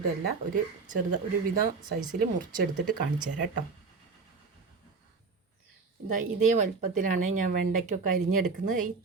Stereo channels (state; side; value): quieter; left; 4.6 dB